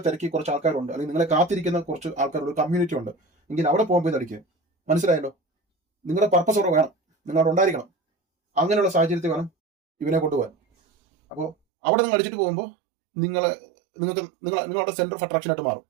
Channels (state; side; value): drops out; left; at 11.6 s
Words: തിരക്കി കുറച്ച് ആൾക്കാരുണ്ട്, അല്ലെങ്കിൽ നിങ്ങളെ കാത്തിരിക്കുന്ന കുറച്ച് ആൾക്കാരുടെ കമ്മ്യൂണിറ്റി ഉണ്ട് എങ്കിൽ അവിടെ പോകുമ്പോൾ ഇതടിക്കുക. മനസ്സിലായല്ലോ? നിങ്ങളുടെ പർപ്പസ് അവിടെ വേണം, നിങ്ങളവിടെ ഉണ്ടായിരിക്കണം. അങ്ങനെയുള്ള സാഹചര്യത്തിൽ വേണം ഇവനെ കൊണ്ടുപോകാൻ. അപ്പോൾ അവിടെ നിങ്ങൾ അടിച്ചിട്ട് പോകുമ്പോൾ നിങ്ങളുടെ സെന്റർ ഓഫ് അട്രാക്ഷൻ ആയിട്ട് മാറും.